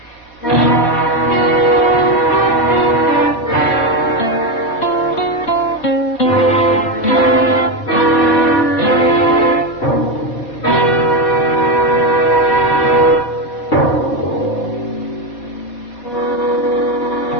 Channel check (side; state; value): right; late; 4.2 ms